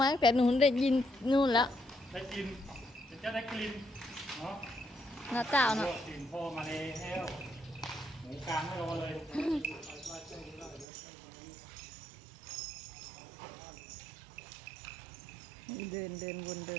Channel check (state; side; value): drops out; left; at 10.9 s